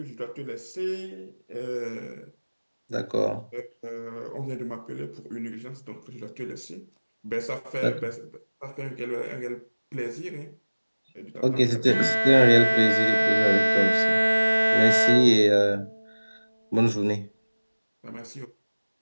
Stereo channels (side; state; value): both; inverted; correlation -1.00